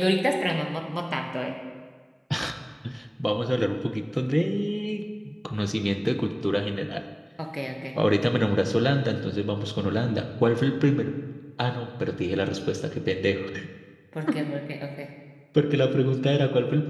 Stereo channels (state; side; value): identical; both; correlation 1.00